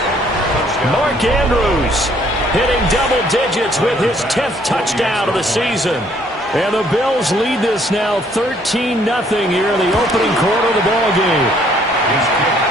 Mark Andrews hitting double digits with his 10th touchdown of the season. And the Bills lead this now 13-0 here in the opening quarter of the ball game.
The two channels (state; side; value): normal; both; correlation 0.64